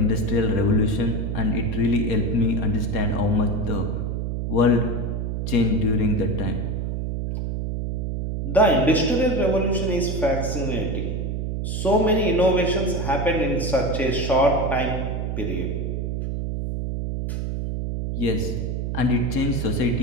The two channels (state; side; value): noise; right; hum, 2 dB below the sound